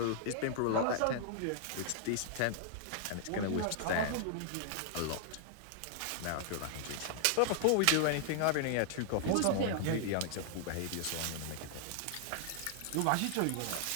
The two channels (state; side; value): different; both; correlation -0.01